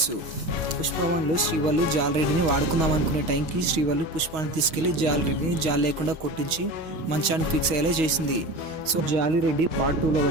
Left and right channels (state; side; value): late; left; 6.3 ms